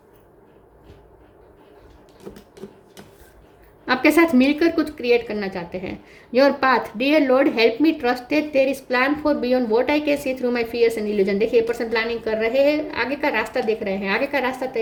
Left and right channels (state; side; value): identical; both; correlation 1.00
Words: आपके साथ मिलकर कुछ क्रिएट करना चाहते हैं। Your path, dear Lord help me trust that there is plan for beyond what I can see through my fears and illusion. देखिए, ये पर्सन प्लानिंग कर रहे हैं, आगे का रास्ता देख रहे हैं, आगे का रास्ता